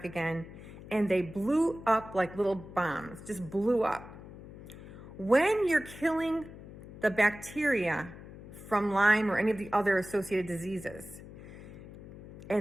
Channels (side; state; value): left; noise; hum, 15 dB below the sound